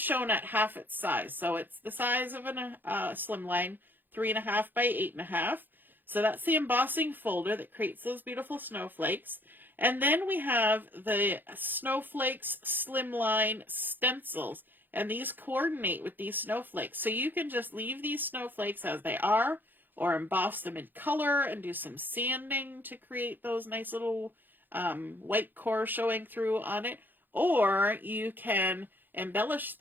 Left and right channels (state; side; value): late; left; 0.091 ms